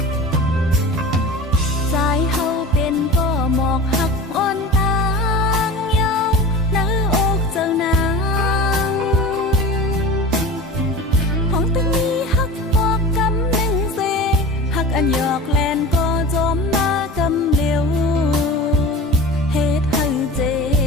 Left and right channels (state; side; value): normal; both; correlation 0.33